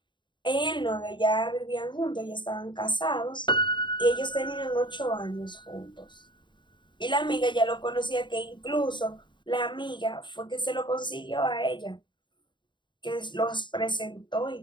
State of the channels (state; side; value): late; right; 0.23 ms